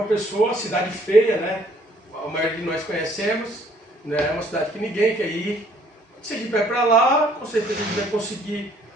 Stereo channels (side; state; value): both; normal; correlation 0.62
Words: Pessoa, cidade feia, né, a maioria de nós conhecemos, né, uma cidade que ninguém quer ir. Se a gente vai para lá, com certeza a gente vai conseguir,